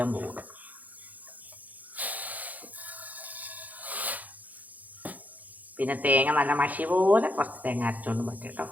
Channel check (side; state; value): left; late; 0.079 ms